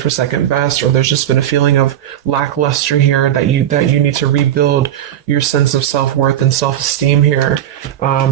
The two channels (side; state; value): left; quieter; 11.3 dB